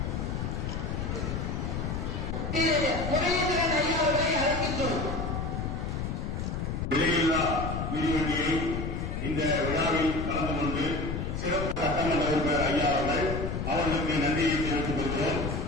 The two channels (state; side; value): noise; left; rumble, 2 dB below the sound